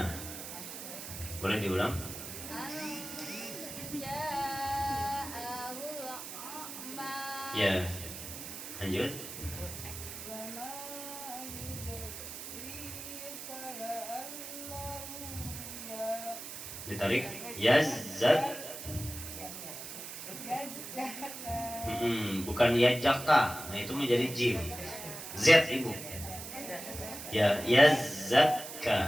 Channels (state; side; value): noise; right; hiss, 9 dB below the sound